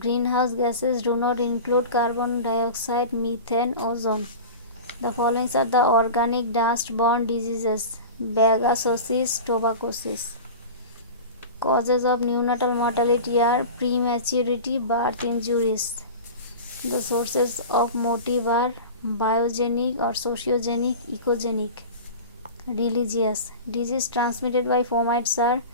gases do not include carbon dioxide, methane, ozone. The following are the organic dust-borne diseases: bagasosis, tuberculosis. Causes of neonatal mortality are prematurity, birth injuries. The sources of motive are biogenic or sociogenic, ecogenic. Religious. Disease transmitted by fomites are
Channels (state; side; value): inverted; both; correlation -0.32